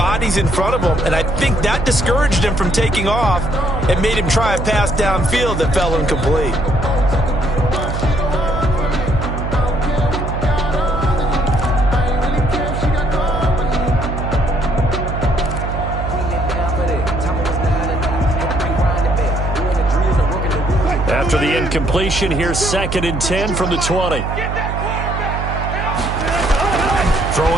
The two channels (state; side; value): noise; right; hum, 3 dB below the sound